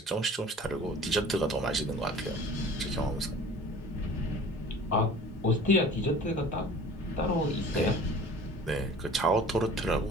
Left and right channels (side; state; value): both; normal; correlation 0.45